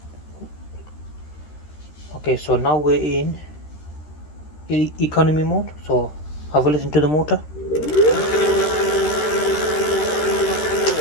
Okay, so now we're in economy mode. So have a listen to the motor.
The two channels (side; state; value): right; late; 13 ms